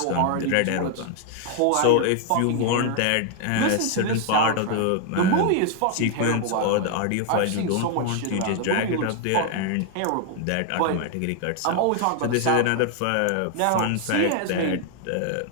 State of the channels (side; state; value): both; different; correlation 0.00